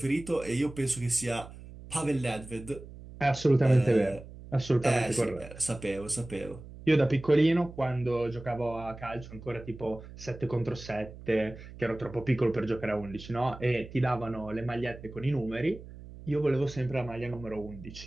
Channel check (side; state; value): right; noise; hum, 16 dB below the sound